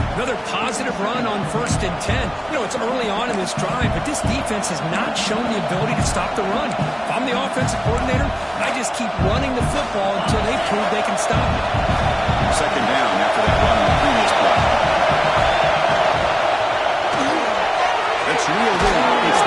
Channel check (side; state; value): both; identical; correlation 1.00